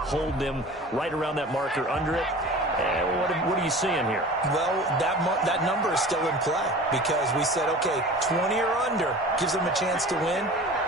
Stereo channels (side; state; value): both; normal; correlation 0.39